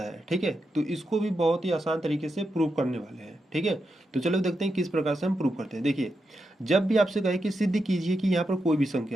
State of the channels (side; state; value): both; normal; correlation 0.86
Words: है। ठीक है, तो इसको भी बहुत ही आसान तरीके से प्रूव करने वाले हैं। ठीक है, तो चलो देखते हैं किस प्रकार से हम प्रूव करते हैं। देखिए, जब भी आपसे कहे कि सिद्ध कीजिए कि यहाँ पर कोई भी